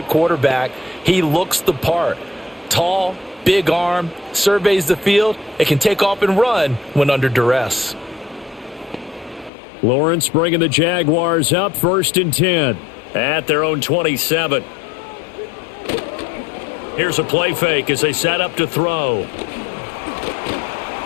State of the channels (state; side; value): drops out; right; at 9.5 s